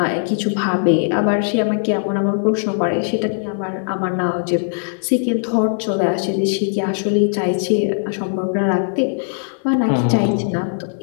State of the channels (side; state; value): right; silent; digital silence